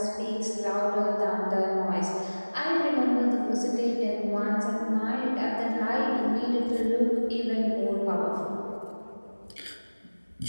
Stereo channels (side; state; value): both; inverted; correlation -1.00